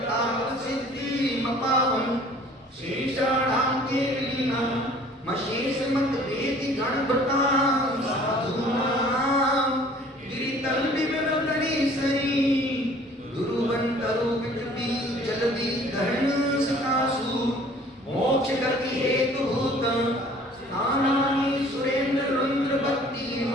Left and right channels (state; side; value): normal; both; correlation 0.52